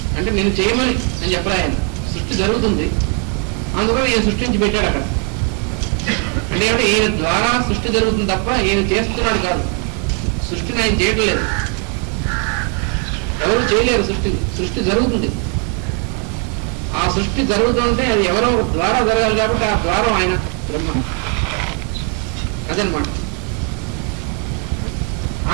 అంటే నేను చేయమని అని చెప్పలే ఆయన. సృష్టి జరుగుతుంది, అందుకని నేను సృష్టించి పెట్టాడు అక్కడ. అంటే ఈయన ద్వారా సృష్టి జరుగుతుంది తప్ప ఈయన చేస్తున్నాడు కాదు. సృష్టిని ఆయన చేయడం లేదు, ఎవరు చేయలేరు. సృష్టి జరుగుతుంది. ఆ సృష్టి జరుగుతుంటే అది ఎవరో ద్వారా జరగాలి కాబట్టి ఆ ద్వారం ఆయన బ్రహ్మ. అదనమాట.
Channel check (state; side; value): quieter; left; 38.2 dB